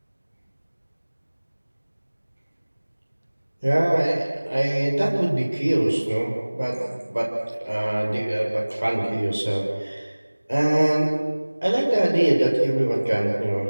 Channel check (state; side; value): inverted; both; correlation -1.00